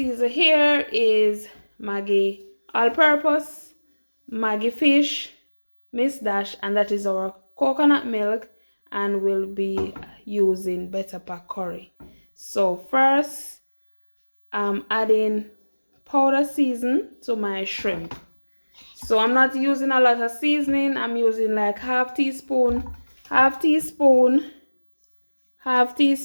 here is Maggi all-purpose, Maggi fish, Miss Dash, and that is our coconut milk, and we'll be using better pack curry. So first, I'm adding powder season to my shrimp. So I'm not using a lot of seasoning. I'm using like half teaspoon of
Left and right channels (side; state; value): both; inverted; correlation -1.00